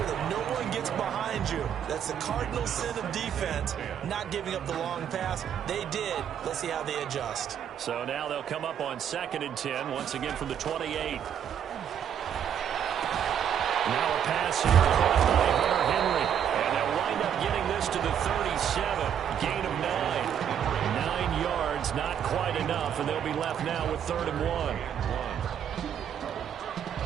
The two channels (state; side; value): quieter; left; 8.9 dB